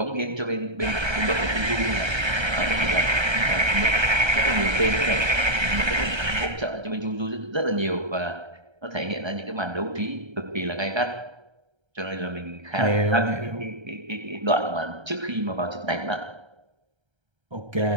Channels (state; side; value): late; left; 1.3 ms